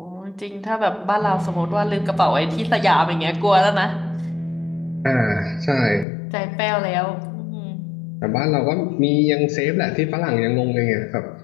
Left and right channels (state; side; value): drops out; right; at 6.1 s